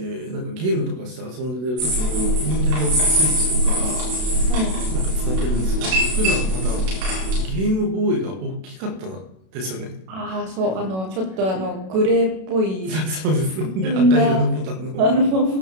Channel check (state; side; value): late; left; 32 ms